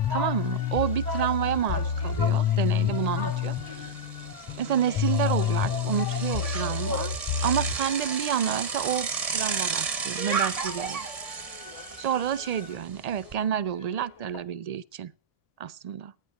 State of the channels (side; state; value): left; late; 1.7 ms